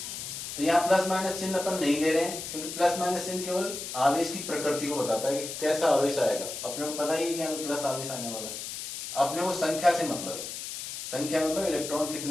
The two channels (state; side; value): noise; left; hiss, 7 dB below the sound